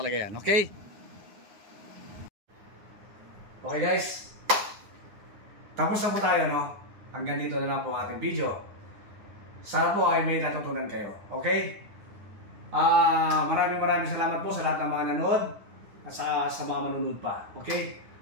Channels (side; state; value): left; late; 9.7 ms